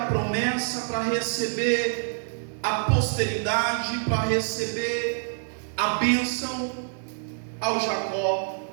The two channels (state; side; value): silent; left; digital silence